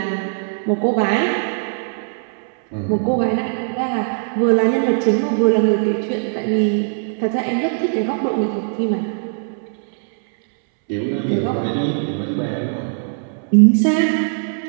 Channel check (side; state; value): left; silent; 66 dB below the other